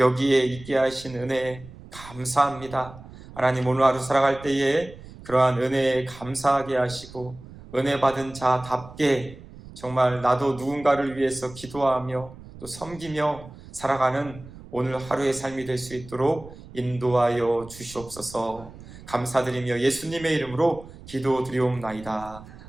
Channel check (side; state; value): right; noise; rumble, 17 dB below the sound